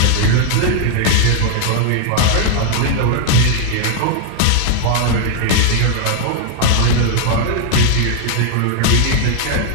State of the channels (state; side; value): different; both; correlation 0.00